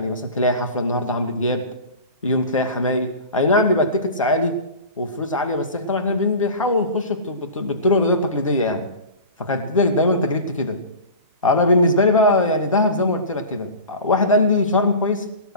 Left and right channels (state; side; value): inverted; both; correlation -0.34